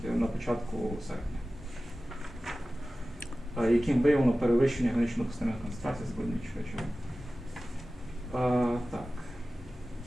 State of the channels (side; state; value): both; normal; correlation 0.96